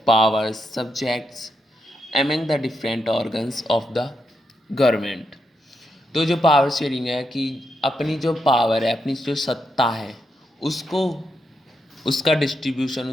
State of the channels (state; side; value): normal; both; correlation 0.82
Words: power subjects among the different organs of the government. तो जो पावर शेयरिंग है कि अपनी जो पावर है, अपनी जो सत्ता है, उसको उसका डिस्ट्रीब्यूशन,